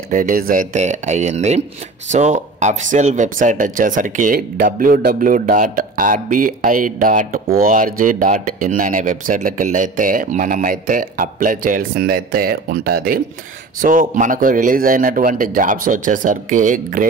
రిలీజ్ అయితే అయ్యింది. సో అఫీషియల్ వెబ్సైట్ వచ్చేసరికి www.rbi.org.in అనే వెబ్సైట్లోకి వెళ్ళి అయితే మనమైతే అప్లై చేయాల్సిందైతే ఉంటుంది. సో మనకు రిలీజ్ అయినటువంటి జాబ్స్ వచ్చేసరికి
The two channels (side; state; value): left; quieter; 3.5 dB